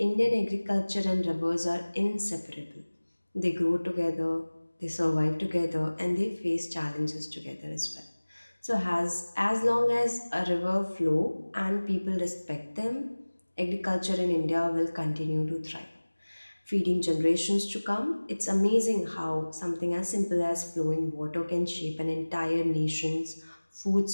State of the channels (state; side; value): inverted; both; correlation -1.00